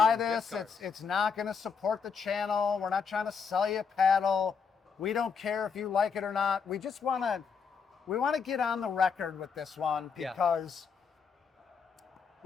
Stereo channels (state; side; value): quieter; right; 6.0 dB